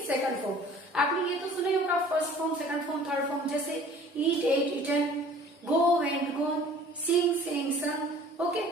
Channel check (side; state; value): both; normal; correlation 0.49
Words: सेकंड फॉर्म। आपने ये तो सुना ही होगा, first form, second form, third form, जैसे ईट, एट, ईटन, गो, वेंट, गोन, सिंग, सेंग, संग। ओके,